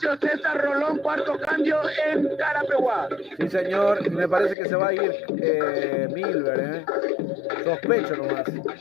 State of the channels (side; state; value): right; drops out; at 4.5 s